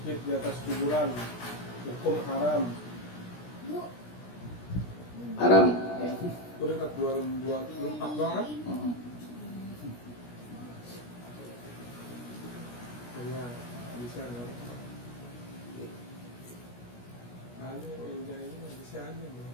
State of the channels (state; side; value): late; right; 17 ms